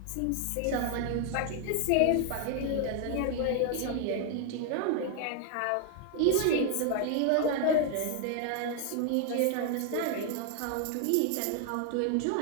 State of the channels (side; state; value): both; different; correlation 0.00